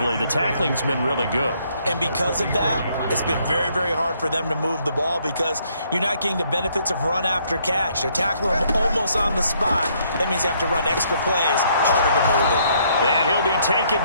the tackling's been really good. And because of that, it's been very, very hard for them to move the ball because you're not getting the benefits of run after catch. They're tackling them almost on the spot. That means you have to run extra plays, harder to move it. And he'll be taken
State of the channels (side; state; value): both; inverted; correlation -0.68